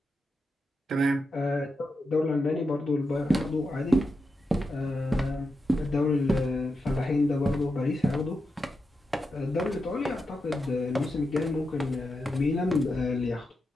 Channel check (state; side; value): normal; both; correlation 0.87